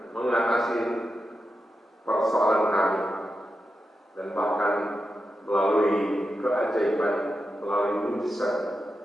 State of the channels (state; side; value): normal; both; correlation 0.89